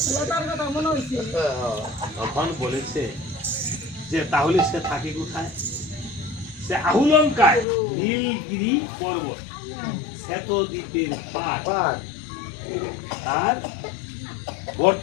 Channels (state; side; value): drops out; right; at 7.7 s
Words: তখন বলেছে যে তাহলে সে থাকে কোথায়? সে আহুলঙ্কায় নীলগিরি পর্বত, শ্বেতদ্বীপের পার, পার তার